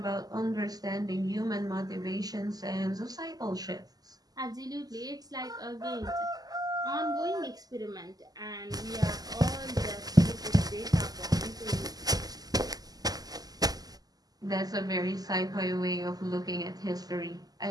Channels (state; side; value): late; left; 0.18 ms